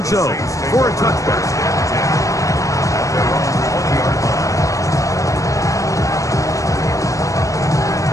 zone for a touchback.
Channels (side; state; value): right; late; 0.16 ms